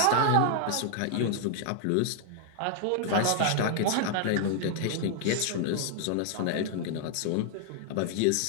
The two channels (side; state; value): both; different; correlation 0.00